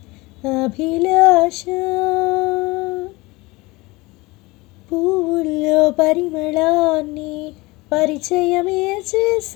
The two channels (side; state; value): right; quieter; 22.8 dB